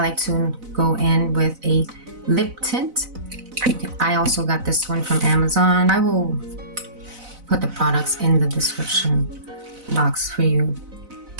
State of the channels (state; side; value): late; left; 4.0 ms